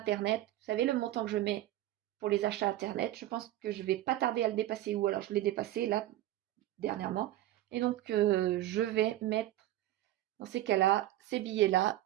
Vous savez, le montant que je mets pour les achats Internet, je pense que je ne vais pas tarder à le dépasser, ou alors je l'ai dépassé là, dernièrement. Et donc, je vais mettre, dans ces cas-là, ces billets-là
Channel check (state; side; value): quieter; left; 14.4 dB